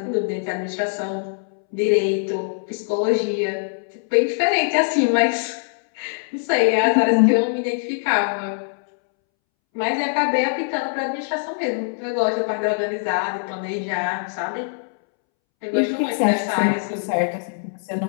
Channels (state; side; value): silent; right; 64 dB below the other